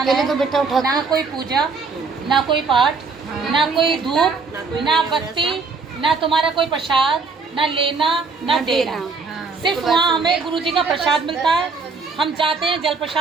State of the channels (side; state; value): left; quieter; 4.5 dB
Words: है, तो बेटा उठा ना कोई पूजा, ना कोई पाठ, ना कोई धूप, ना बत्ती, ना तुम्हारा कोई प्रसाद, ना लेना ना देना, सिर्फ वहाँ हमें गुरु जी का प्रसाद मिलता है। हम जाते हैं जल